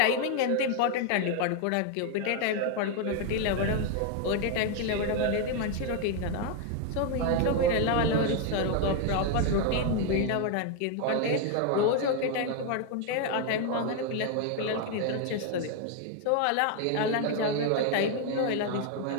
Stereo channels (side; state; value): both; different; correlation 0.01